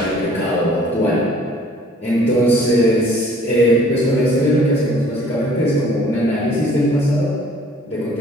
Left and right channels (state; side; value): normal; both; correlation 0.55